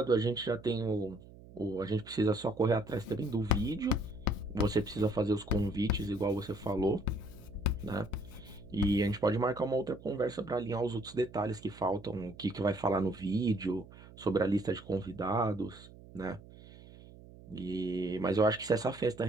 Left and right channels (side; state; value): right; noise; hum, 19 dB below the sound